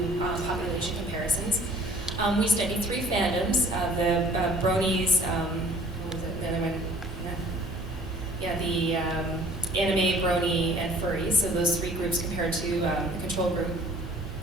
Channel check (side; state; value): both; normal; correlation 0.52